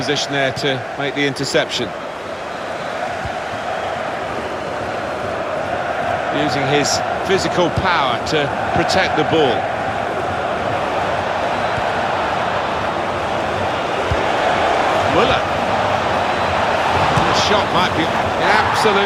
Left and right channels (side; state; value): both; identical; correlation 1.00